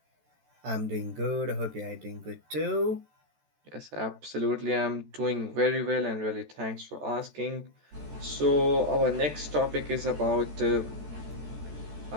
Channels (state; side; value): late; left; 14 ms